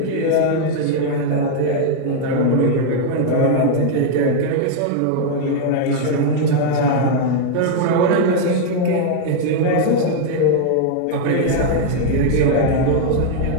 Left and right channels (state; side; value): different; both; correlation 0.00